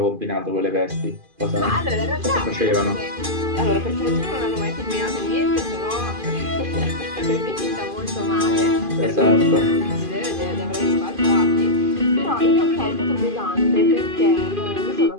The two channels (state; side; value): late; left; 2.5 ms